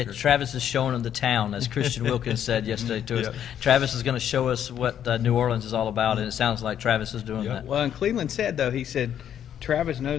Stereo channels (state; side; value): quieter; right; 9.7 dB